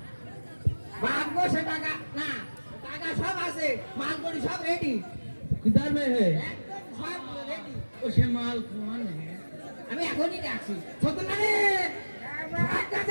বাপ বসে টাকা না, টাকা সব আছে, মাল করি সব রেডি, किधर में है একদম সব রেডি। उसे माल कौन है আমি এখনই ডাকছি সত্যনা রে, ভাত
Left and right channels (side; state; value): both; inverted; correlation -1.00